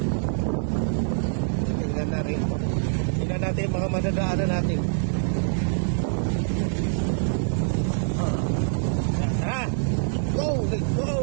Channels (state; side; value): silent; left; digital silence